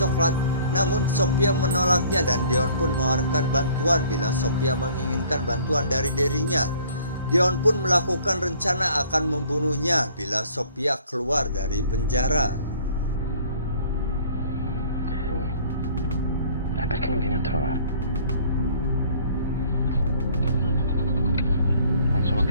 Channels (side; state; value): both; inverted; correlation -0.55